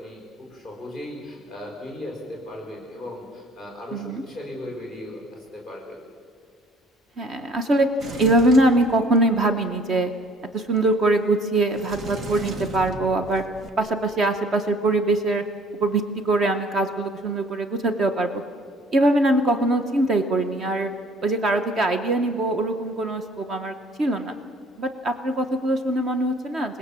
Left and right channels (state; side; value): normal; both; correlation 0.55